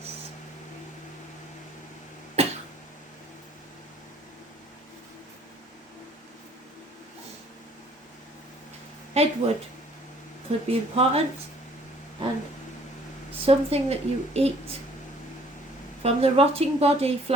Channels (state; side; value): normal; both; correlation 0.57